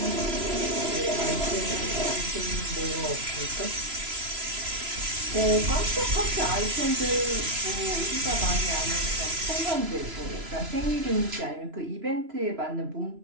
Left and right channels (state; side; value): late; left; 3.0 ms